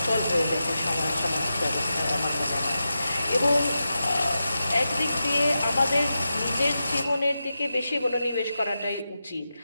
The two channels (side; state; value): both; inverted; correlation -0.90